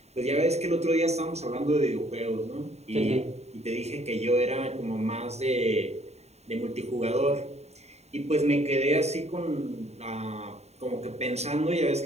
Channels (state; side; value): late; left; 0.31 ms